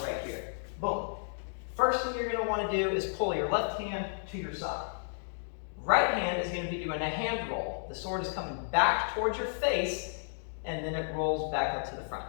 right here, boom. First thing you're going to want to do is pull your left hand to your side. Right hand is going to be doing a hand roll. The sword is coming back towards your face, and then it rolls back up to the front.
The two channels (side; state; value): right; silent; digital silence